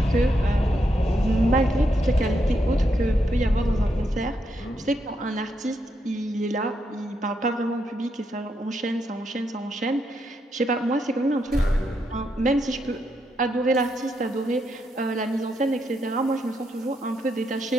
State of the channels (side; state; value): both; normal; correlation 0.80